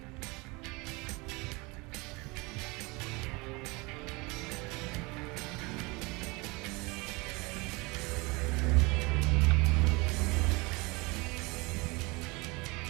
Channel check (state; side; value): quieter; left; 25.8 dB